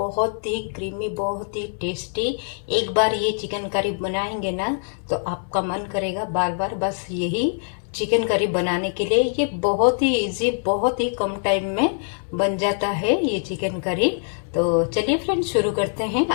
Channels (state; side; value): silent; right; 63 dB below the other